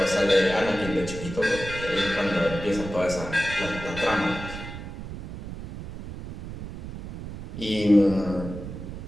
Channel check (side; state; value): right; noise; rumble, 10 dB below the sound